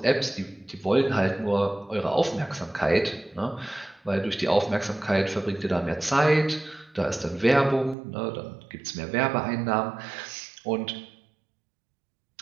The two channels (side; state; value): left; drops out; at 8.0 s